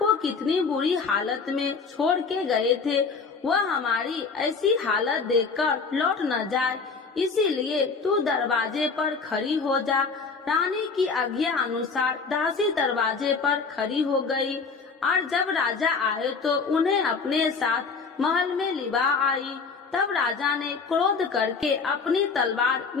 कितनी बुरी हालत में छोड़ के गए थे, वह हमारी ऐसी हालत देखकर लौट न जाए, इसीलिए तू दरवाजे पर खड़ी हो जा। रानी की आज्ञा अनुसार दासी दरवाजे पर खड़ी हो गई और जब राजा आए तो उन्हें अपने साथ महल में लिवा आई। तब राजा ने क्रोध करके अपनी तलवार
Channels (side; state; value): right; quieter; 4.9 dB